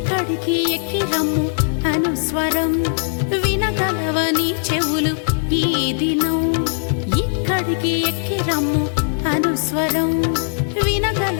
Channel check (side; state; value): right; silent; 66 dB below the other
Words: ఎక్కి రమ్ము అనుస్వరం వినగలవని చెవులు ఈ దినం ఇక్కడికి ఎక్కి రమ్ము అనుస్వరం